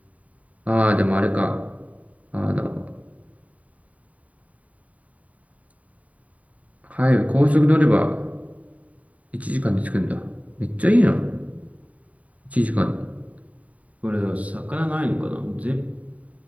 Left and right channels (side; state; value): left; late; 0.069 ms